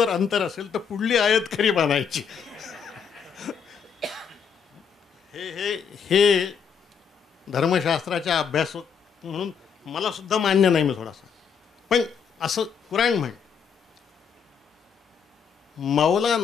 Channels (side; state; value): right; quieter; 6.8 dB